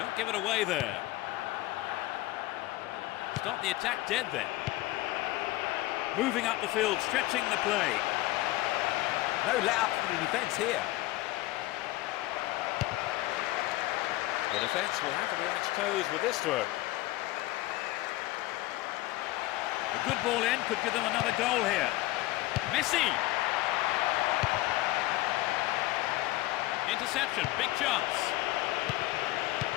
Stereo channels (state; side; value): quieter; right; 17.9 dB